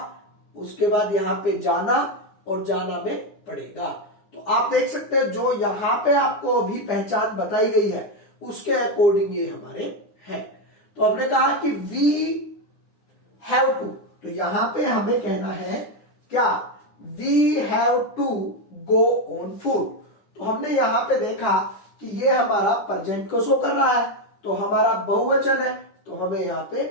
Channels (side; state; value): right; late; 9.8 ms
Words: उसके बाद यहां पे जाना, और जाना में पड़ेगा। तो आप देख सकते हैं जो यहां पे आपको अभी पहचान बताई गई है उसके अकॉर्डिंग ये हमारे हैं। तो हमने कहा कि वी हैव टू, तो यहां पे हमें कहना है क्या, we have to go on food. तो हमने यहां पे देखा कि ये हमारा प्रेजेंट को शो कर रहा है, तो हमारा बहुवचन है, तो हमें यहां पे